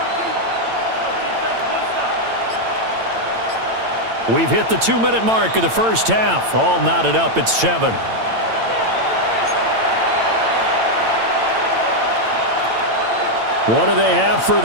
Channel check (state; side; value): late; left; 8.9 ms